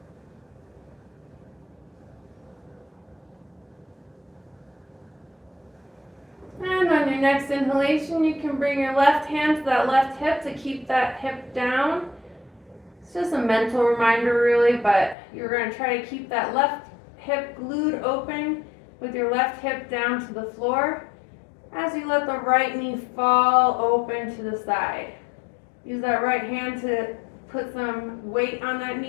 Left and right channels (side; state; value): right; drops out; at 15.2 s